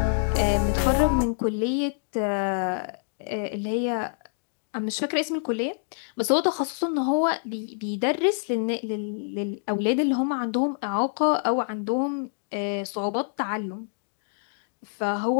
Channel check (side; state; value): right; silent; digital silence